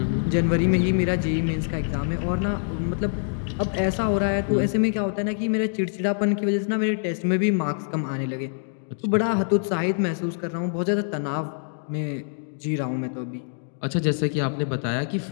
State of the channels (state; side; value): silent; right; digital silence